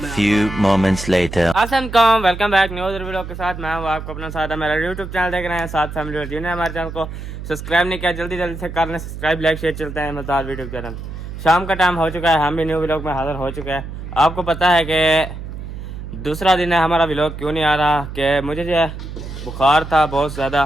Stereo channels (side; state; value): right; noise; hum, 9 dB below the sound